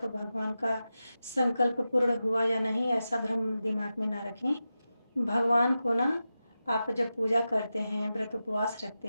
भगवान का संकल्प पूर्ण हुआ या नहीं, ऐसा भ्रम दिमाग में ना रखें। भगवान को ना, आप जब पूजा करते हैं, व्रत उपवास रखते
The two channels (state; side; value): inverted; both; correlation -0.92